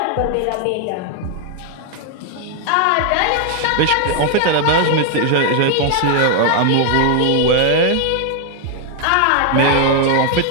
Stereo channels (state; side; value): different; both; correlation 0.00